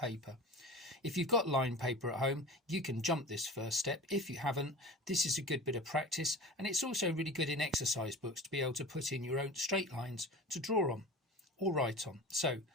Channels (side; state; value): both; normal; correlation 0.34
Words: If you've got line paper at home, you can jump this first step. If you haven't, this is a good bit of practice, and it's also really good in exercise books to be able to put in your own straight lines to draw on or write on. So